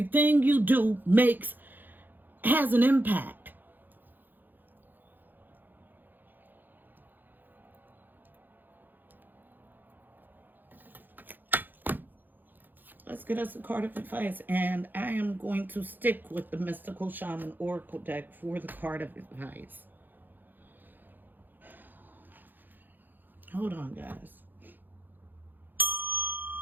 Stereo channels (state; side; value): late; left; 0.088 ms